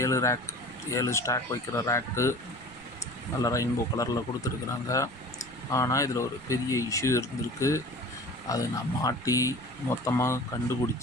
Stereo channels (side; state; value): right; noise; rumble, 22 dB below the sound